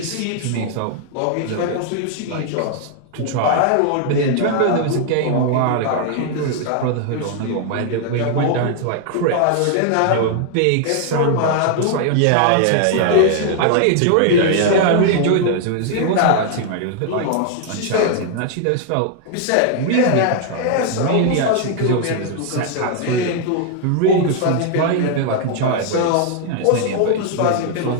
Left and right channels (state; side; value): different; both; correlation 0.00